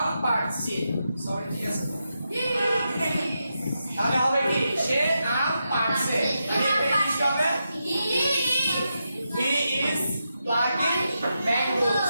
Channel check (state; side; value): inverted; both; correlation -0.86